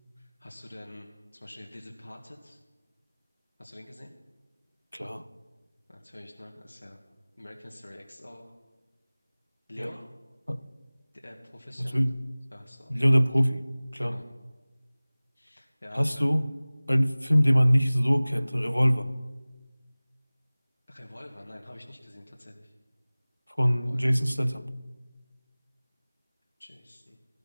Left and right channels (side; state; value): both; inverted; correlation -1.00